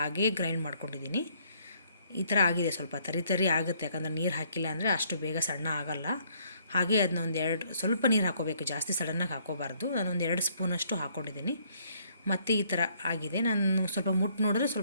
ಗ್ರೈಂಡ್ ಮಾಡ್ಕೊಂಡಿದ್ದೀನಿ. ಈ ಥರ ಆಗಿದೆ. ಸ್ವಲ್ಪ ತರಿ ಆಗುತ್ತೆ, ಯಾಕಂದರೆ ನೀರು ಹಾಕಿಲ್ಲ ಅಂದರೆ ಅಷ್ಟು ಬೇಗ ಸಣ್ಣ ಆಗೋಲ್ಲ. ಹಾಗೆ ಅದನ್ನ ಸ್ವಲ್ಪ ನೀರು ಹಾಕ್ಕೋಬೇಕು, ಜಾಸ್ತಿ ಸಡನ್ನಾಗಿ ಹಾಕ್ಕೋಬಾರ್ದು. ನಾನು ಒಂದು 2 ಸ್ಪೂನಷ್ಟು ಹಾಕ್ಕೊಂಡಿದ್ದೀನಿ. ಮತ್ತು ಈ ಥರ ಆಗಿದೆ. ನಾನು ಸ್ವಲ್ಪ ನೋಡಿದ್ರೆ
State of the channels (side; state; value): both; inverted; correlation -0.65